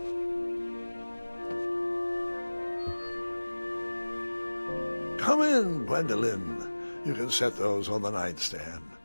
Come in, Gwendolyn. You can set those on the nightstand.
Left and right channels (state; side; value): inverted; both; correlation -1.00